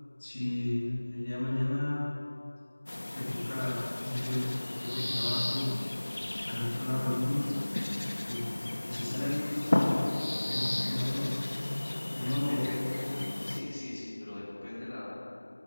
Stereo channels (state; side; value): inverted; both; correlation -1.00